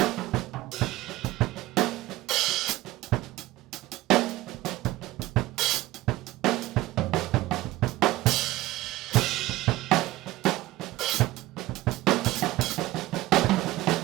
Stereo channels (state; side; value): quieter; left; 17.0 dB